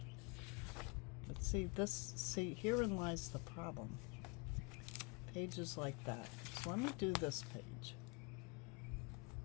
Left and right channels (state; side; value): quieter; right; 30.3 dB